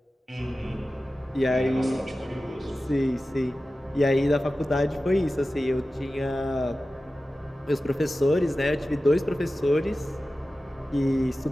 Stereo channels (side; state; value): both; normal; correlation 0.95